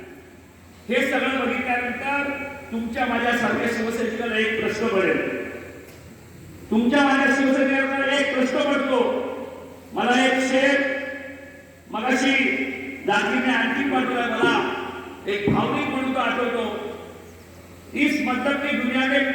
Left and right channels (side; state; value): both; identical; correlation 1.00